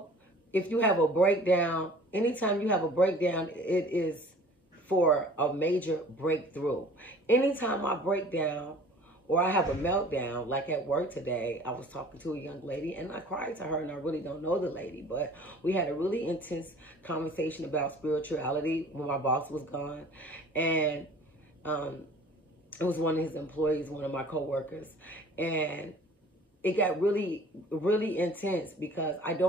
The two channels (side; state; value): both; normal; correlation 0.48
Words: if you have a breakdown, anytime you have a breakdown, it is for a major breakthrough. Anytime I break down or I have a meltdown, like at work today, I was talking to a young lady and I cried to her, and I really don't know the lady, but we had a really intense conversation about spirituality when my boss was gone. And it was one of his employees, one of my coworkers, and it got really, really intense because I